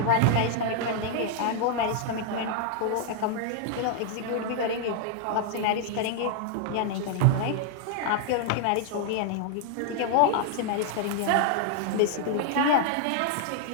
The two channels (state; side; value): different; both; correlation -0.01